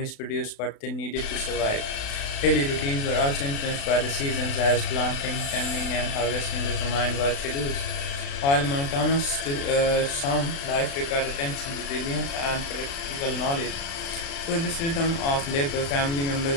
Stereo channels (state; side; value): late; right; 36 ms